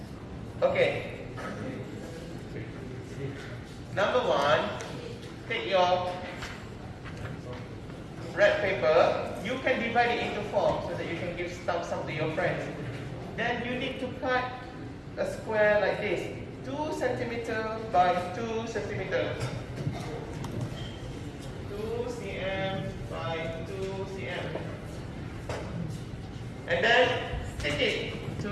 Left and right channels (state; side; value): identical; both; correlation 1.00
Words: Okay. Number one, take your red paper. You can divide it into four so that you can give some to your friends. Then you need to cut a square like this, 2 cm by 2 cm. 2 cm by 2 cm. And then stick it to